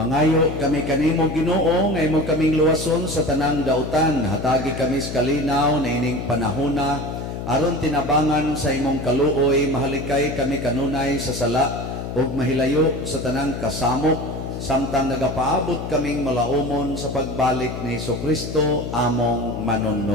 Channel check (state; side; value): noise; left; hum, 6 dB below the sound